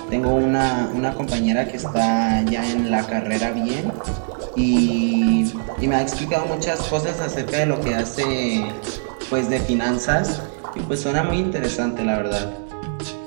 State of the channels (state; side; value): silent; left; 64 dB below the other